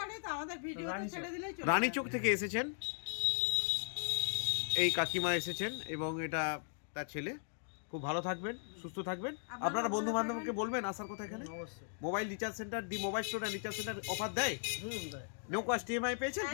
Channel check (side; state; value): right; silent; digital silence